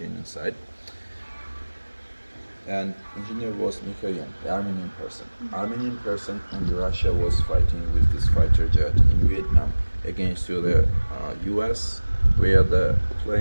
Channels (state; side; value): inverted; both; correlation -1.00